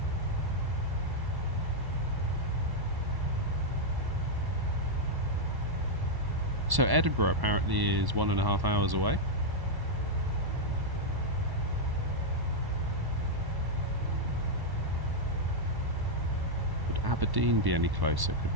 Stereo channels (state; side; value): late; left; 1.1 ms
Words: So Edinburgh apparently is 1.5 hours away. Would Aberdeen be any closer? Could